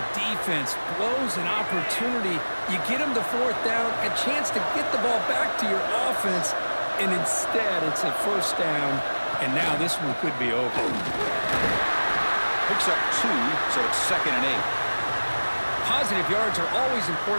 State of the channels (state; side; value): inverted; both; correlation -1.00